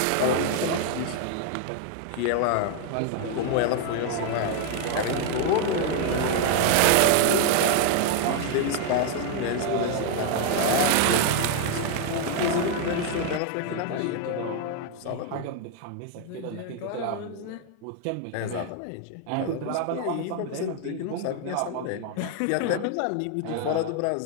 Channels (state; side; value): different; both; correlation 0.00